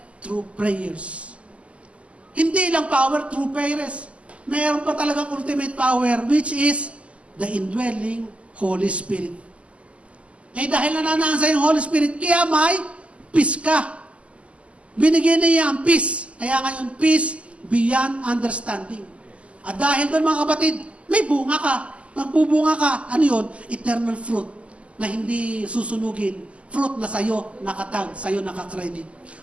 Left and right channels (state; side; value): late; left; 0.060 ms